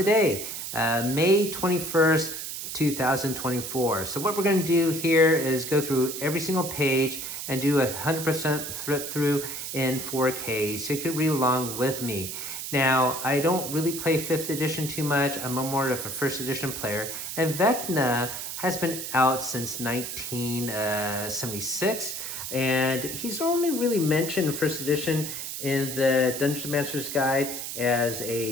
May 21st, 2024. So what we're going to do here is go through every single page and do a 100% flip through in 4K, so you can read along with me. Now, I don't really play 5th edition too much. I'm more of a 1st edition player, and Vecna has been out since 1976, and he's only really mentioned in 1st edition in the Dungeon Master's Guide as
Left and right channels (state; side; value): noise; right; hiss, 6 dB below the sound